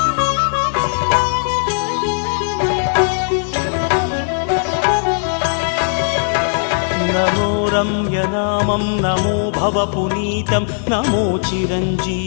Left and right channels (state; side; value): silent; right; 62 dB below the other